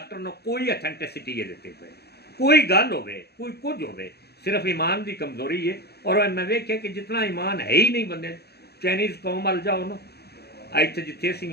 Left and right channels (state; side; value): late; right; 0.47 ms